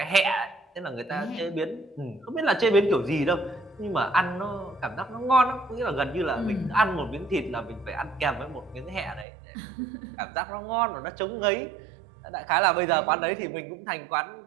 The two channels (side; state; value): left; drops out; at 9.2 s